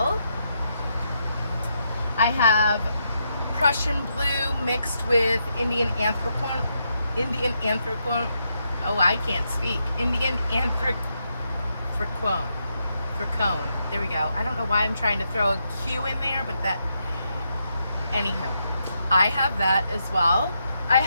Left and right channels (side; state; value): both; inverted; correlation -0.81